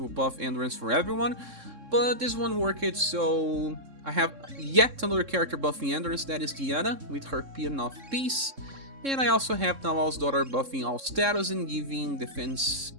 buff endurance for everyone. But this one worked, so I have yet another character buffing endurance, that is Diana, with her Pean of Peace. And I also have Narwhal's daughter buffing all status and giving defense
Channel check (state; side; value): late; left; 3.7 ms